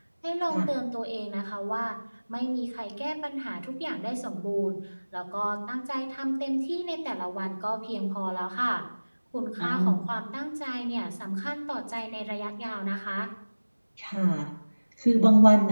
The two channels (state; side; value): inverted; both; correlation -1.00